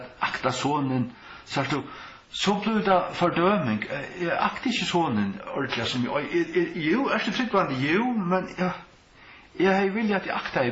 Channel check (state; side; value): identical; both; correlation 1.00